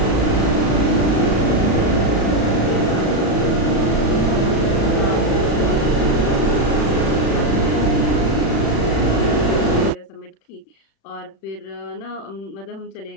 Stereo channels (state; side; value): late; right; 36 ms